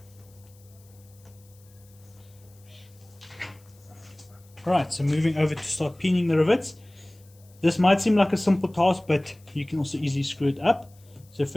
Right, so moving over to start pinning the rivets. This might seem like a simple task, but you can also easily screw it up. So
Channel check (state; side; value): noise; left; hiss, 29 dB below the sound